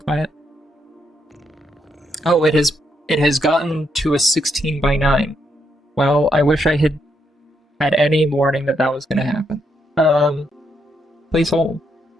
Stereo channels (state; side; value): normal; both; correlation 0.77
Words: Oh, it has gotten to a 16:9. Well, I wish I had any warning that was going to happen. Please hold.